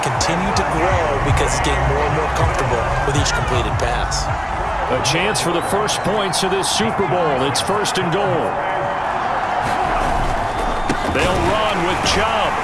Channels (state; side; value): identical; both; correlation 1.00